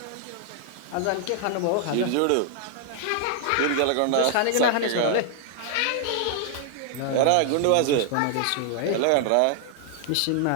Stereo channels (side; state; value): both; different; correlation 0.00